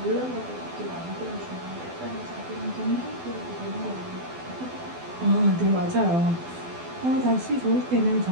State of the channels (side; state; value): left; late; 12 ms